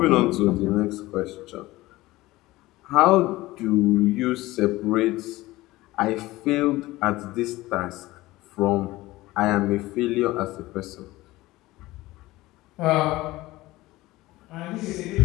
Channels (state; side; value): quieter; right; 18.6 dB